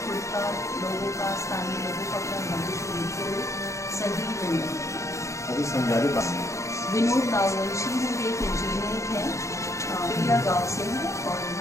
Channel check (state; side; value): late; right; 0.15 ms